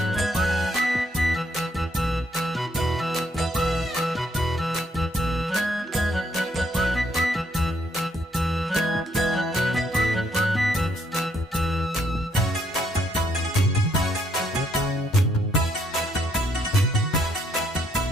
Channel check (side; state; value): both; normal; correlation 0.71